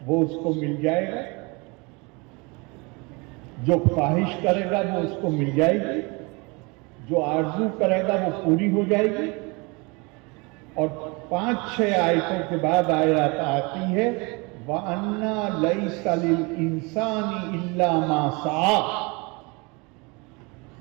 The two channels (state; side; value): quieter; left; 28.1 dB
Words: وہ اس کو مل جائے گا؟ جو خواہش کرے گا وہ اس کو مل جائے گی؟ جو آرزو کرے گا وہ پوری ہو جائے گی؟ اور 5-6 آیتوں کے بعد آیت آتی ہے وَأَنَّا لَيْسَ لِلْإِنسَانِ إِلَّا مَا سَعَىٰ،